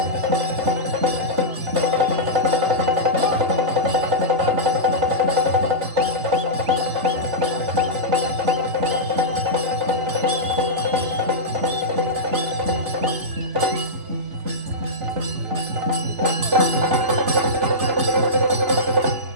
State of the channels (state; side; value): late; left; 3.9 ms